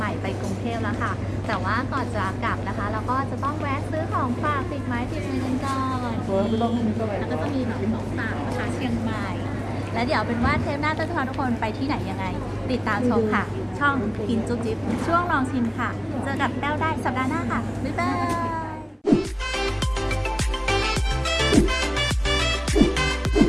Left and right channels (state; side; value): identical; both; correlation 1.00